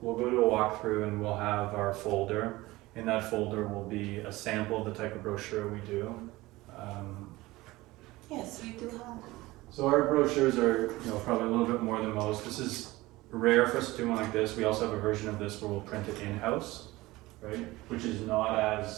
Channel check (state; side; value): quieter; left; 19.5 dB